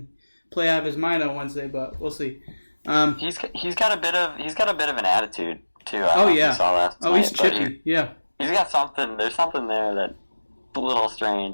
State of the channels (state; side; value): inverted; both; correlation -1.00